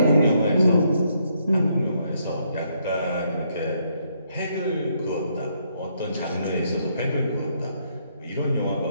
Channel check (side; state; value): both; inverted; correlation -0.73